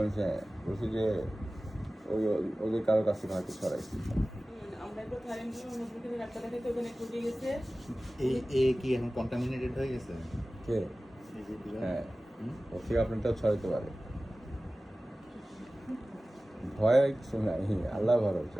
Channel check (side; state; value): both; normal; correlation 0.97